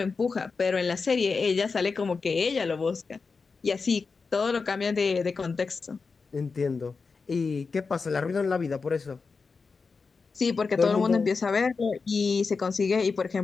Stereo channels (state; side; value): quieter; right; 4.7 dB